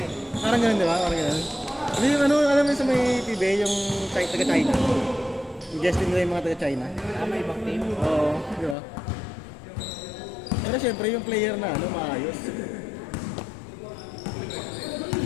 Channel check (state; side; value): drops out; right; at 8.8 s